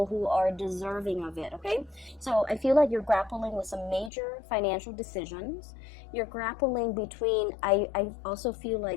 who are deserving of it, okay? So I feel like you're grappling with some major financial decisions. You're grappling between, I also feel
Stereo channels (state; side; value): drops out; right; at 4.1 s